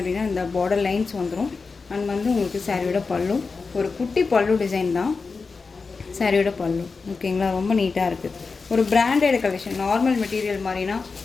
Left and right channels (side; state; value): right; quieter; 4.5 dB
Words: அப்படின்னா இந்த பார்டர் லைன்ஸ் வந்துடும். அண்ட் வந்து உங்களுக்கு சாரியோட பல்லு ஒரு குட்டி பல்லு டிசைன் தான் சாரியோட பல்லு. ஓகேங்களா? ரொம்ப நீட்டாக இருக்குது. ஒரு பிராண்டட் கலெக்ஷன். நார்மல் மெட்டீரியல் மாதிரினா